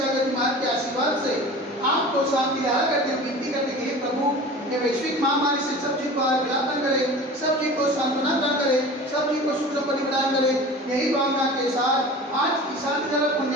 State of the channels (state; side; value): normal; both; correlation 0.38